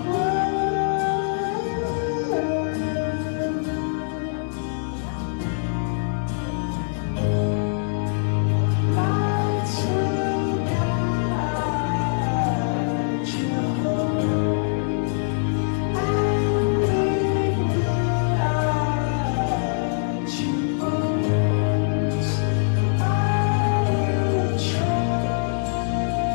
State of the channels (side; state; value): right; silent; 63 dB below the other